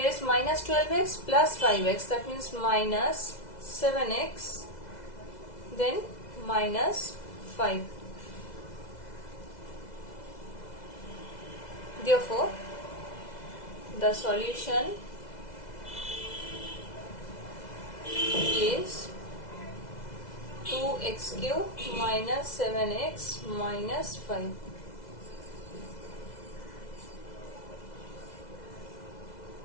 is minus 12x plus 5x, that means minus 7x, then minus 5. Therefore, the solution is 2x cube minus 7x minus 5.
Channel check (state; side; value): late; right; 2.0 ms